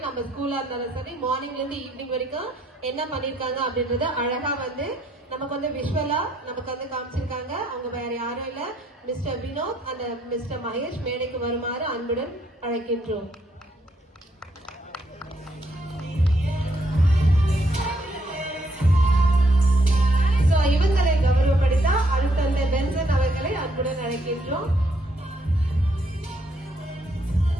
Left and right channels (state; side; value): normal; both; correlation 0.72